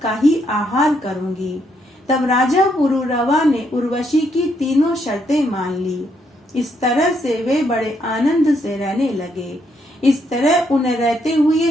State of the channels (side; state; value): both; normal; correlation 0.75